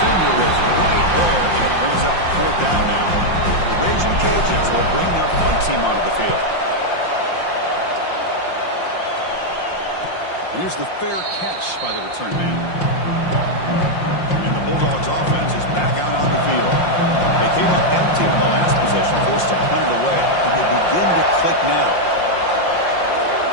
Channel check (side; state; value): right; late; 5.7 ms